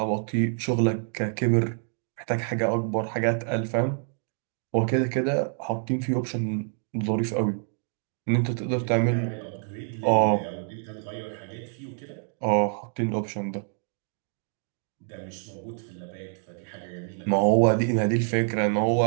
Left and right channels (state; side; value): silent; left; 56 dB below the other